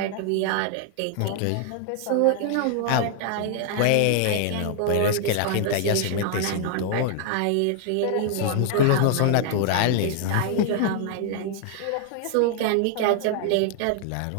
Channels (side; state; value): both; different; correlation 0.00